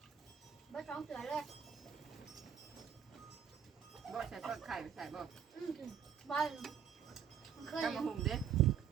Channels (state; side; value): quieter; left; 8.1 dB